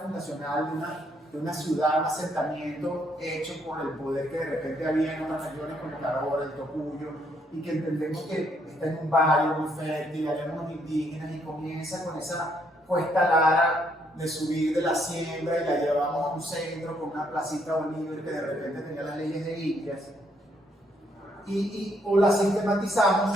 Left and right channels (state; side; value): normal; both; correlation 0.72